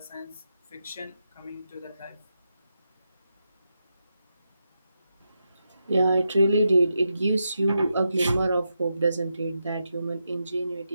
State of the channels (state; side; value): inverted; both; correlation -0.86